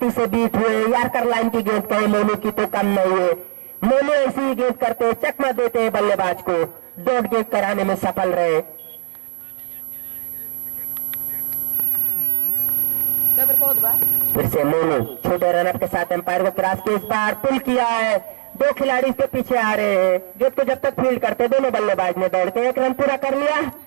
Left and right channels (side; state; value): left; silent; digital silence